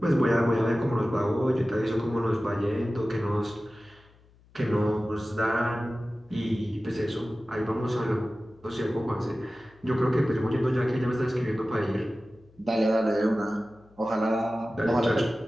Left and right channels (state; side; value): noise; left; hum, 29 dB below the sound